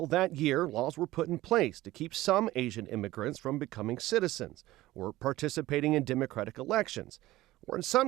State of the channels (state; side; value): quieter; left; 16.9 dB